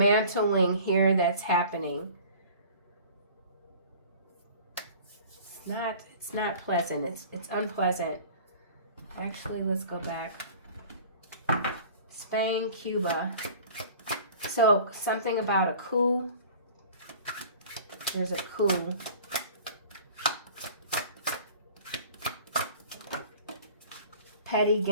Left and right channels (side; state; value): both; inverted; correlation -0.45